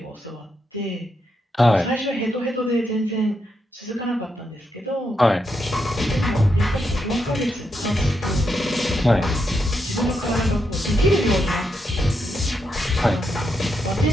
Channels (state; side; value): normal; both; correlation 0.82